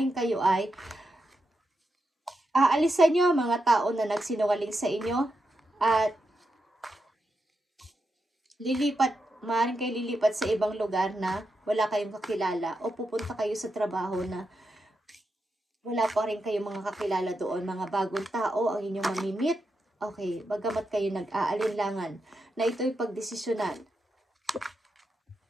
kayo ay aalisan nyo mga tao na nagsinungaling sa inyo at maaring kayo lilipat sa ibang lugar na wala kayong kakilala o pupunta kayo sa trabaho na wala pa rin kayong mga kakilala doon, mga bagong tao ang inyong mamimit. Okay, bagamat kayo nag-aalinlangan na ito'y pagdesisyonan.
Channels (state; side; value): normal; both; correlation 0.86